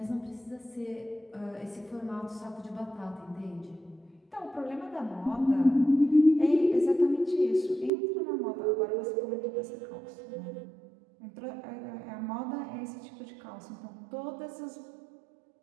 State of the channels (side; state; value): left; drops out; at 7.9 s